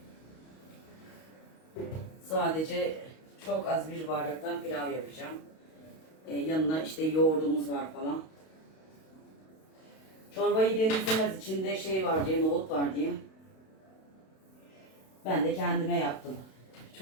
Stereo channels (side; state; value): right; late; 32 ms